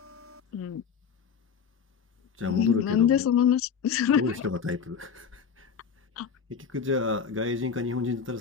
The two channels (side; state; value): right; quieter; 6.8 dB